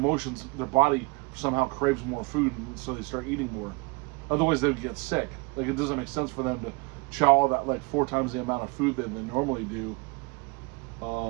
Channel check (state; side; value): quieter; left; 28.8 dB